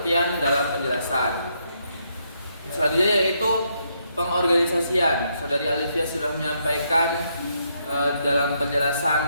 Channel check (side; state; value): both; inverted; correlation -0.76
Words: dalam penjelasan. Selanjutnya yaitu pengorganisasian. Saudari Alfia sudah menyampaikan dalam